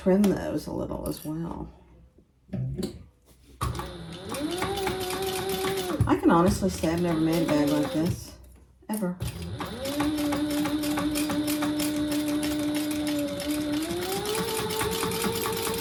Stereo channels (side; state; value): both; identical; correlation 1.00